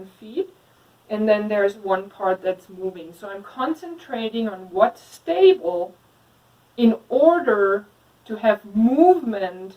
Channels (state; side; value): identical; both; correlation 1.00